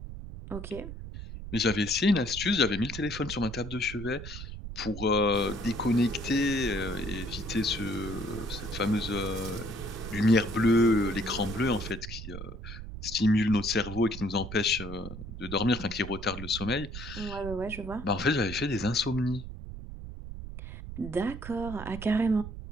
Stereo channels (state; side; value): noise; right; rumble, 10 dB below the sound